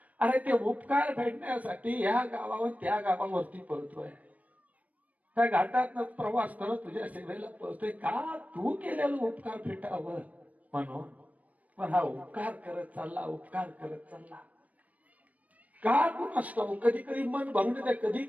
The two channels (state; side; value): late; left; 0.071 ms